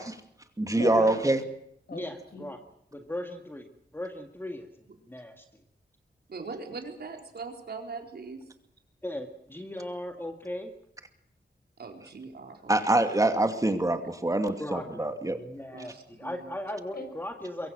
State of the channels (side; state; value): both; normal; correlation 0.73